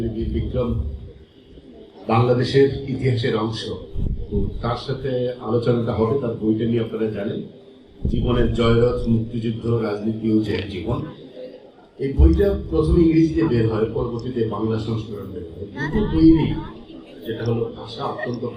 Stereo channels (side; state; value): both; identical; correlation 1.00